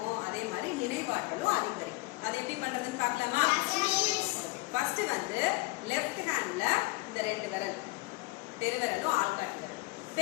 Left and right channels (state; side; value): quieter; right; 22.8 dB